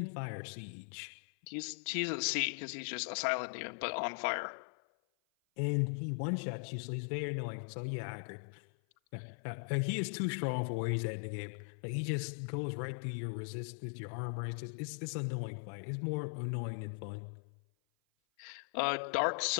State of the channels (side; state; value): right; silent; 52 dB below the other